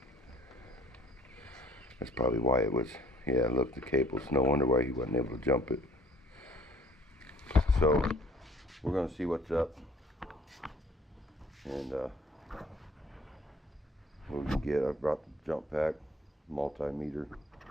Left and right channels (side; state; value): both; normal; correlation 0.56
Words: That's probably why it was. Yeah, look, the cable's no wonder why he wasn't able to jump it. So we're gonna see what's up, and what we can get. I brought the jump pack, multimeter,